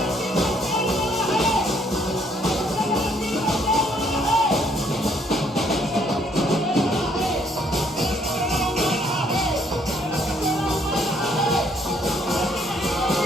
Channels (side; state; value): both; normal; correlation 0.66